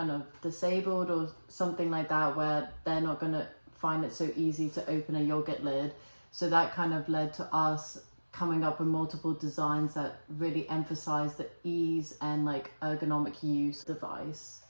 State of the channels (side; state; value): both; inverted; correlation -1.00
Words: of disabled or something like that, where they're not going to find it so easy to open a yogurt lid. So that kind of led to us coming up with multiple designs that really emphasize the ease and like ergonomic use device.